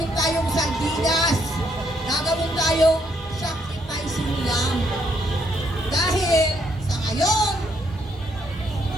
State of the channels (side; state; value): both; normal; correlation 0.72